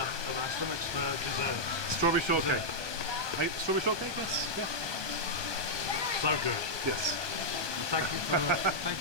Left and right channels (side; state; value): left; late; 1.2 ms